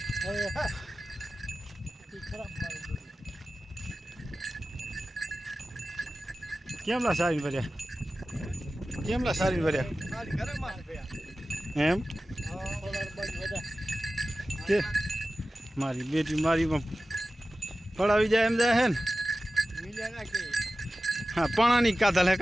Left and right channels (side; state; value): both; normal; correlation 0.95